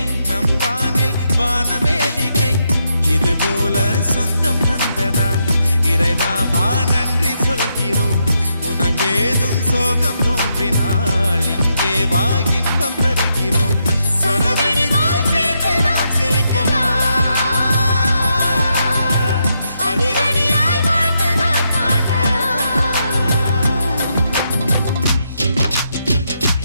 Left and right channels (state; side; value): inverted; both; correlation -0.81